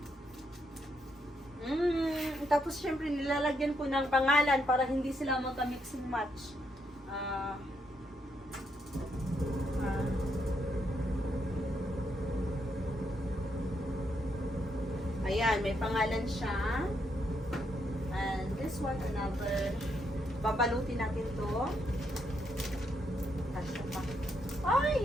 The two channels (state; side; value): normal; both; correlation 0.78